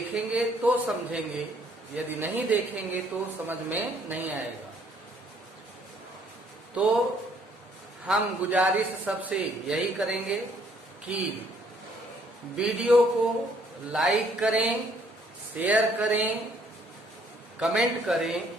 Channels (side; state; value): both; normal; correlation 0.64